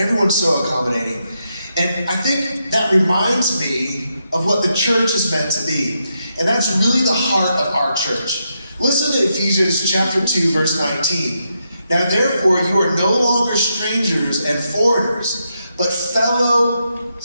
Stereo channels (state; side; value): inverted; both; correlation -0.82